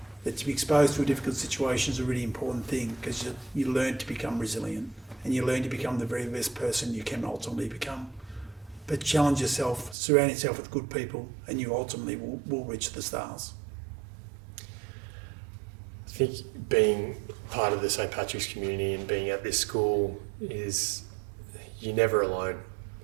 that to be exposed to a difficult situation is a really important thing, because you learn to become resilient and you learn to become the very best person you can ultimately become. But challenge yourself, surround yourself with good people, and you ultimately will reach the stars. I think being part of the St. Patrick's community and being at this school is, you're never alone.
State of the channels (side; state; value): left; drops out; at 10.0 s